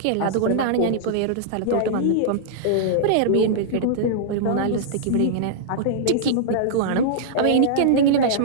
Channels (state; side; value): different; both; correlation -0.02